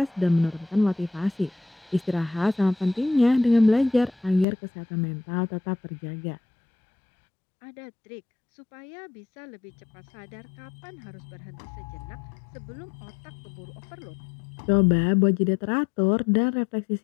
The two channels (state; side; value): drops out; right; at 4.5 s